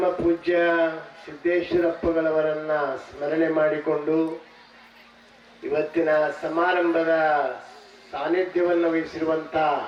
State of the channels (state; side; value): identical; both; correlation 1.00